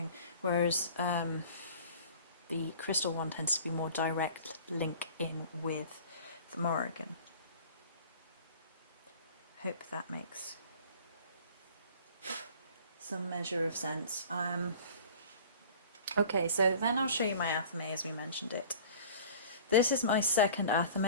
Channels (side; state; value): both; inverted; correlation -0.44